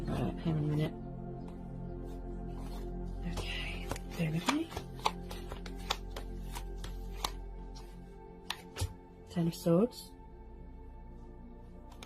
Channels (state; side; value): identical; both; correlation 1.00